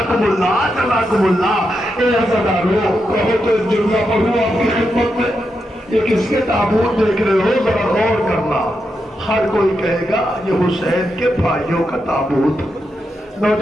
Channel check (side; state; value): both; normal; correlation 0.85